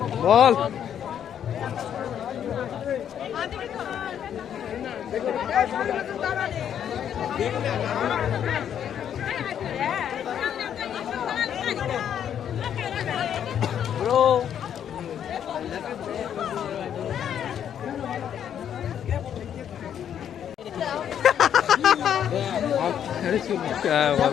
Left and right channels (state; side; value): quieter; right; 9.3 dB